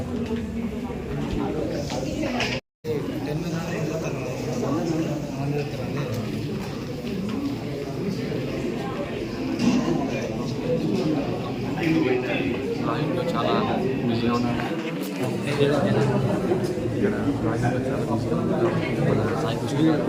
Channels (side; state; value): both; identical; correlation 1.00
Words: చాలా బిజీగా ఉన్నారు.